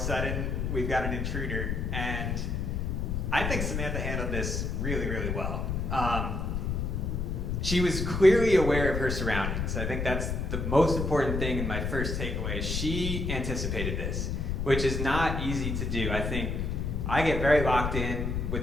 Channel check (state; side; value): noise; left; rumble, 1 dB below the sound